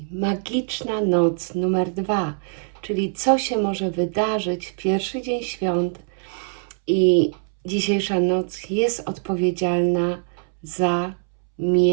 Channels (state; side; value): silent; left; 63 dB below the other